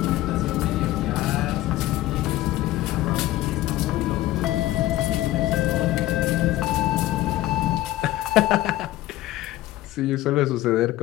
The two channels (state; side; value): quieter; right; 15.8 dB